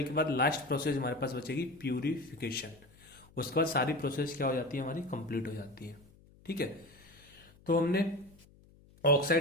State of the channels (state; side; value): noise; left; hum, 26 dB below the sound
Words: के बाद लास्ट प्रोसेस हमारे पास बचेगी प्यूरिफिकेशन। उसके बाद सारी प्रोसेस क्या हो जाती है, हमारी कंप्लीट हो जाती है। ठीक है। तो हमने